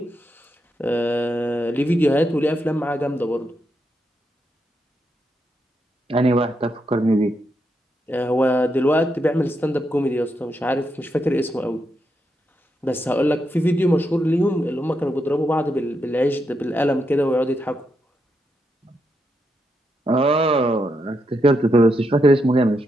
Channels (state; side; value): normal; both; correlation 0.82